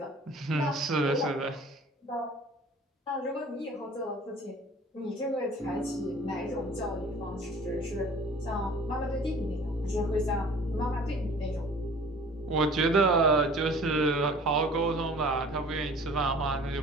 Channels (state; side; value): normal; both; correlation 0.48